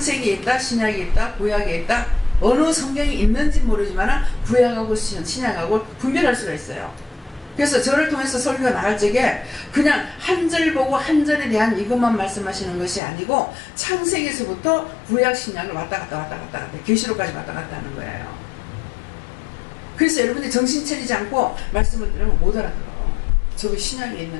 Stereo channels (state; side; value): drops out; right; at 13.0 s